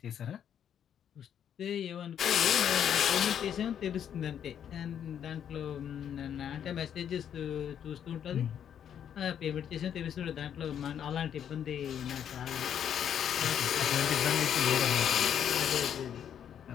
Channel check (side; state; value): right; quieter; 9.1 dB